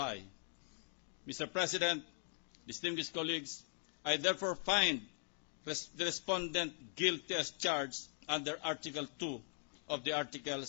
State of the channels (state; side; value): silent; right; 51 dB below the other